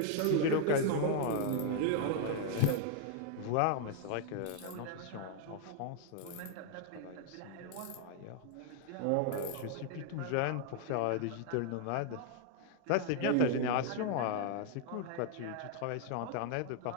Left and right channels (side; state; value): both; different; correlation 0.00